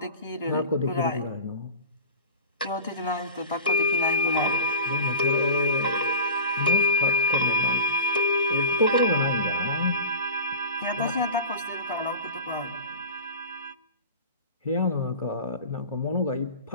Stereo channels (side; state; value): both; inverted; correlation -0.35